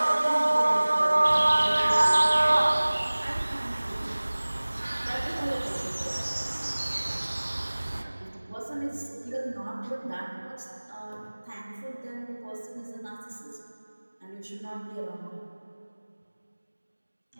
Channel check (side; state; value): both; inverted; correlation -1.00